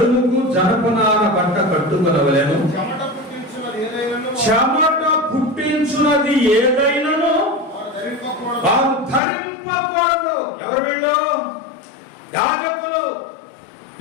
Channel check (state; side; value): drops out; right; at 9.2 s